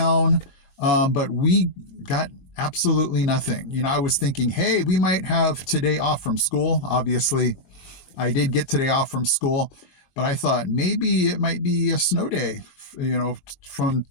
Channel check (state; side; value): late; right; 22 ms